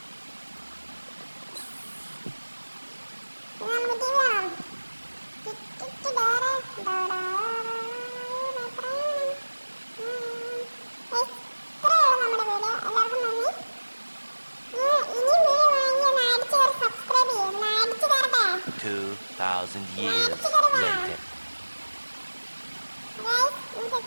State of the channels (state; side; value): inverted; both; correlation -1.00